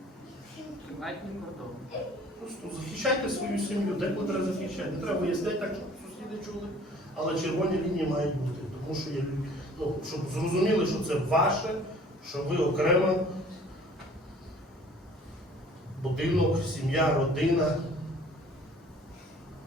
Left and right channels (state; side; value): normal; both; correlation 0.52